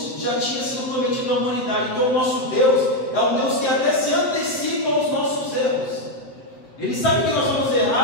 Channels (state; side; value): late; right; 7.8 ms